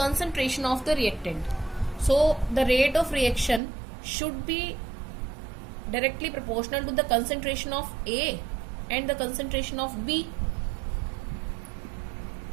of the reactant. So the rate of reaction should be directly proportional to the concentration of A and the concentration of B,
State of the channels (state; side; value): drops out; left; at 3.6 s